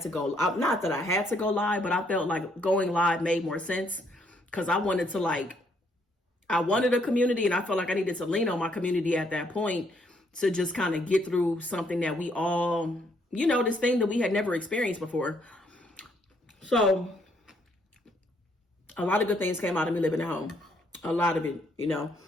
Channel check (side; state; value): both; normal; correlation 0.70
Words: to go, not that I had to go live, but I felt like going live made more sense because I wanted to like, I wanted a community and I felt like I needed to lean on my community at that point to just kind of get through something that we all, you know, this thing that we had never experienced before. So a lot of good things came out of me living at home. A lot of it, you know.